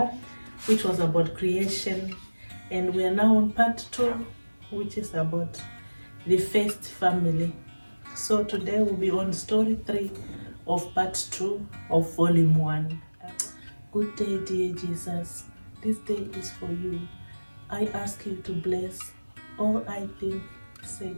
which was about creation, and we are now on part 2, which is about the first family. So today we'll be on story 3 of part 2 of volume 1. Good day, dear Jesus. This day is for you. I ask you to bless all I think, say,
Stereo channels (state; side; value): inverted; both; correlation -1.00